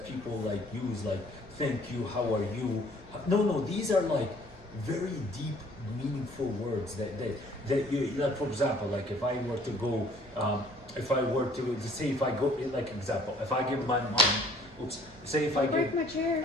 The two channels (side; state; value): both; normal; correlation 0.57